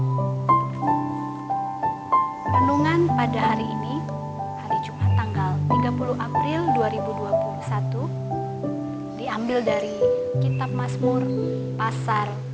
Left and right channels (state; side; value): identical; both; correlation 1.00